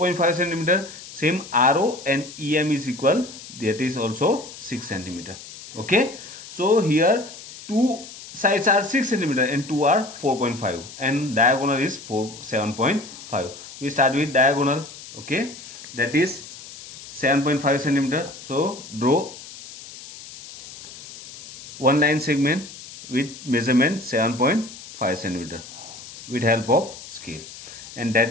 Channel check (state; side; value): noise; left; hiss, 15 dB below the sound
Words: centimeter. Same RO and EM is equal, that is also 6 centimeter. Okay, so here two sides are 6 centimeter and two are 4.5 and diagonal is 7.5. We start with diagonal. Okay, that is 7.5 centimeter. So draw one line segment with measurement 7.5 centimeter with help of scale, and